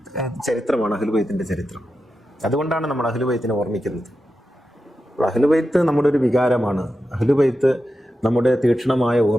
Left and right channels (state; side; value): normal; both; correlation 0.90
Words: ചരിത്രമാണ് അഹ്ലുബൈത്തിന്റെ ചരിത്രം. അതുകൊണ്ടാണ് നമ്മൾ അഹ്ലുബൈത്തിനെ ഓർമ്മിക്കുന്നത്. അഹ്ലുബൈത്ത് നമ്മുടെ ഒരു വികാരമാണ്. അഹ്ലുബൈത്ത് നമ്മുടെ തീക്ഷ്ണമായ